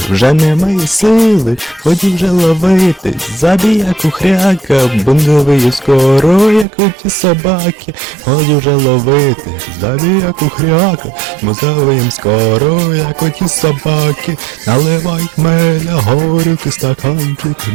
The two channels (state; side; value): drops out; left; at 6.7 s